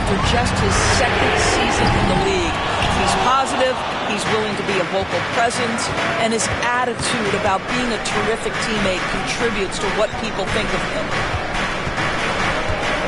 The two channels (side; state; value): both; identical; correlation 1.00